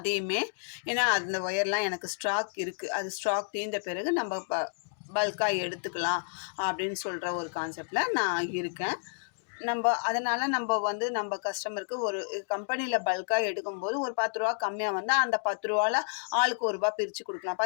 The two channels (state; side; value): silent; right; digital silence